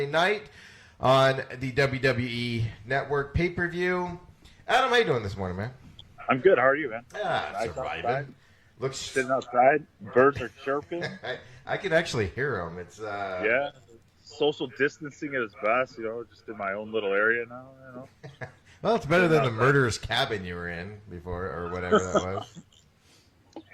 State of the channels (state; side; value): identical; both; correlation 1.00